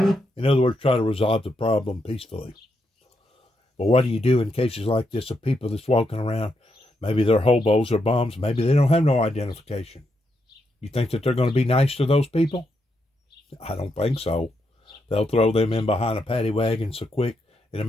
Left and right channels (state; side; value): normal; both; correlation 0.81